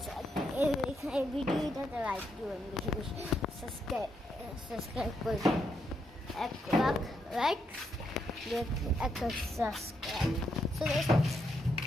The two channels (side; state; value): both; normal; correlation 0.79